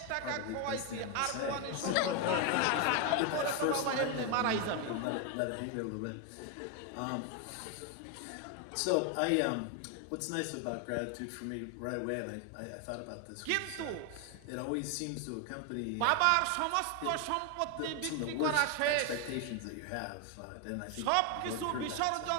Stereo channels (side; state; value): both; different; correlation 0.01